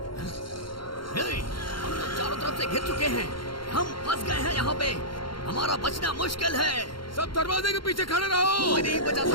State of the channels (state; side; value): late; right; 0.73 ms